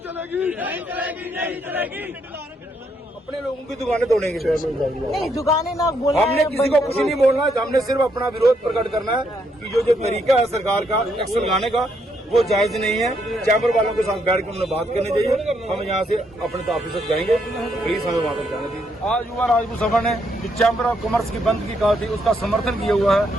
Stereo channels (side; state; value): both; normal; correlation 0.75